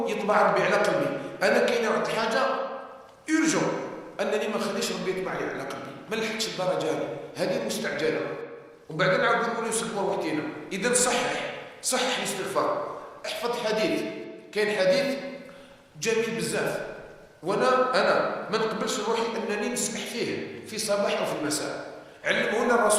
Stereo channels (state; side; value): identical; both; correlation 1.00